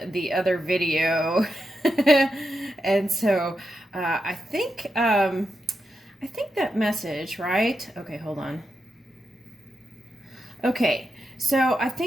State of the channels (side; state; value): both; normal; correlation 0.87